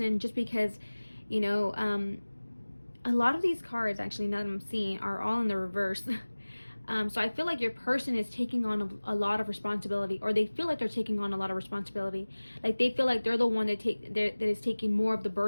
just because, you know, a lot of these cards, actually, now that I'm seeing, are all in the reverse. So I feel like your person is taking on a lot of responsibility, or they feel like they're taking on a lot of responsibility. Like they feel like they're the one that is taking more of the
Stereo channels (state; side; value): inverted; both; correlation -1.00